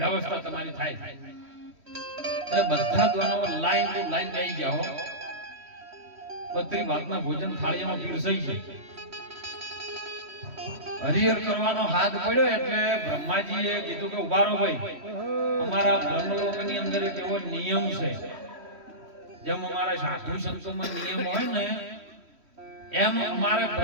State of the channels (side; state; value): left; late; 3.1 ms